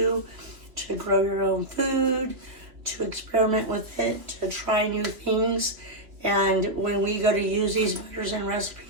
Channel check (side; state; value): left; late; 2.8 ms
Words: to grow your own food, to experiment with it, to try new things. And when we go to use these butters and